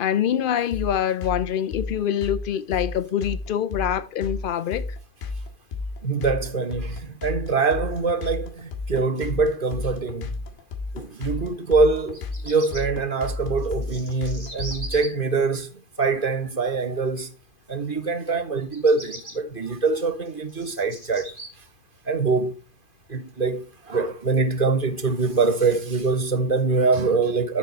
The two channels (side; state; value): right; late; 2.5 ms